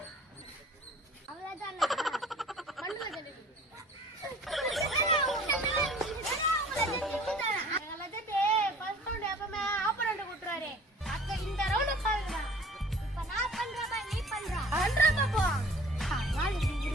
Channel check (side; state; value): both; normal; correlation 0.49